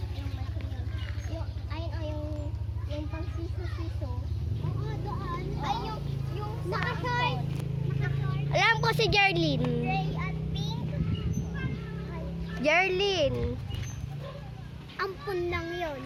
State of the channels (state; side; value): identical; both; correlation 1.00